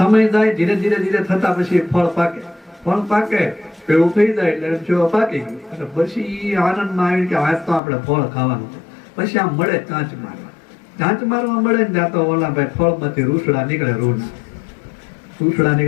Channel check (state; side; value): drops out; right; at 7.8 s